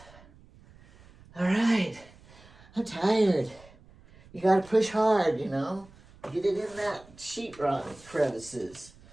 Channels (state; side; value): noise; right; rumble, 24 dB below the sound